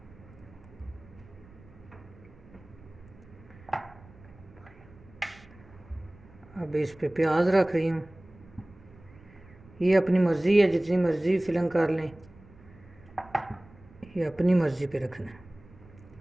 अब इस पे प्याज रख रही हूँ। ये अपनी मर्ज़ी है, जितनी मर्ज़ी फिलिंग कर लें, ये अपनी मर्ज़ी पे रखना है।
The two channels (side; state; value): right; noise; rumble, 23 dB below the sound